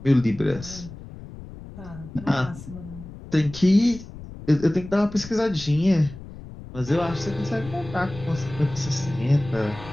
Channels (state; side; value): noise; left; rumble, 14 dB below the sound